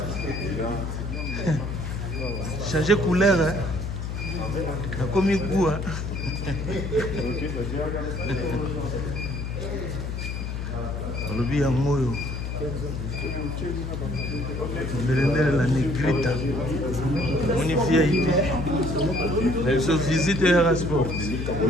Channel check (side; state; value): left; noise; hum, 4 dB below the sound